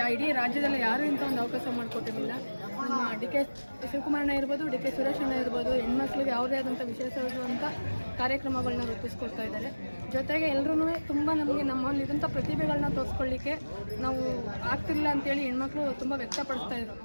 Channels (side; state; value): both; inverted; correlation -1.00